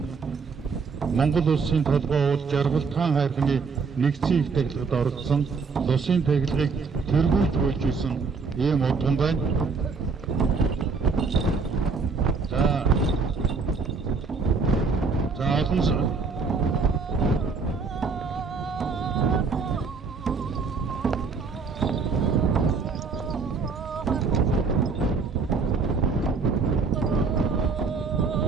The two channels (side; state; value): left; quieter; 4.8 dB